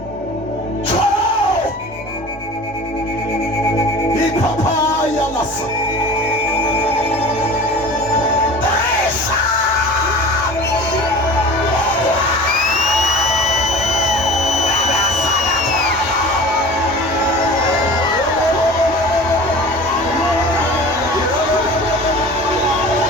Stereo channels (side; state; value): both; normal; correlation 0.39